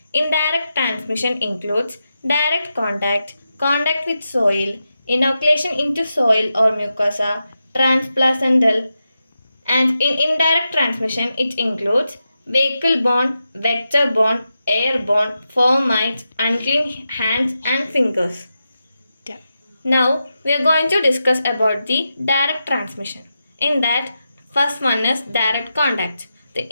Indirect transmission includes direct contact, contact with soil, inoculation into soil or mucosa, transplacental, and in indirect transmission it includes vehicle-borne, vector-borne, airborne, fomites, unclean hands and fingers. Now we are going to discuss about the direct transmission. In that, first one is direct contact.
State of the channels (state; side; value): inverted; both; correlation -0.89